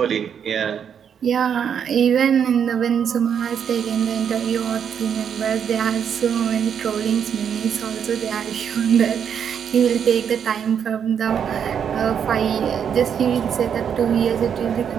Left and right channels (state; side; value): quieter; left; 7.9 dB